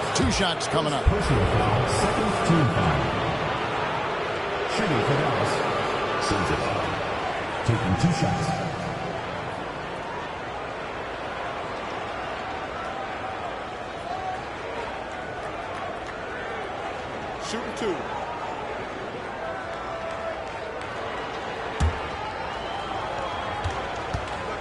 2 shots coming up. Personal foul, 2nd team foul. Shooting for Dallas. Sensabaugh taking 2 shots. Shooting 2.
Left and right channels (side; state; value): both; identical; correlation 1.00